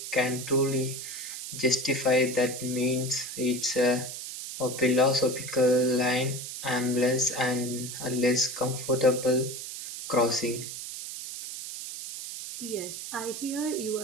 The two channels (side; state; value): right; noise; hiss, 8 dB below the sound